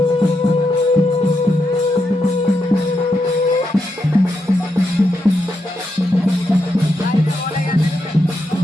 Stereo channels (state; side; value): normal; both; correlation 0.83